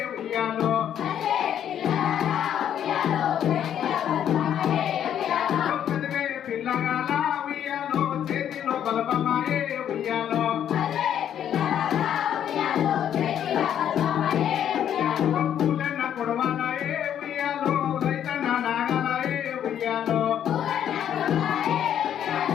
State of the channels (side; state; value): right; quieter; 9.8 dB